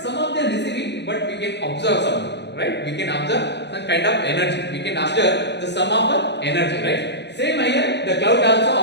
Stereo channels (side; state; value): right; late; 0.50 ms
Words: some of them receiving, but we can observe something, right? We can observe some kind of energy. We can observe the sum of the energy, right? Same here, the cloud